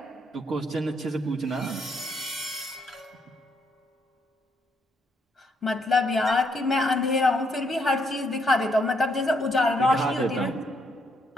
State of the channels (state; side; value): normal; both; correlation 0.73